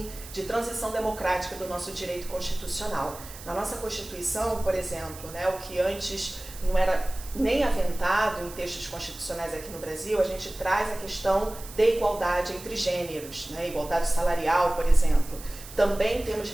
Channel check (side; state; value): right; noise; hiss, 15 dB below the sound